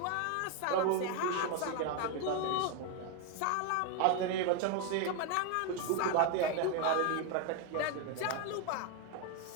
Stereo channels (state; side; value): different; both; correlation 0.01